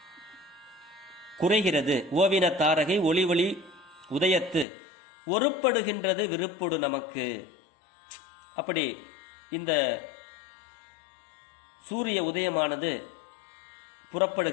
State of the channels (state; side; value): drops out; right; at 4.7 s